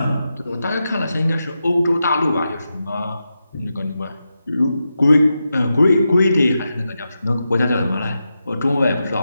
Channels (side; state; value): both; inverted; correlation -0.89